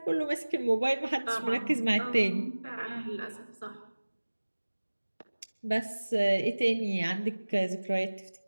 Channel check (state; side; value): inverted; both; correlation -1.00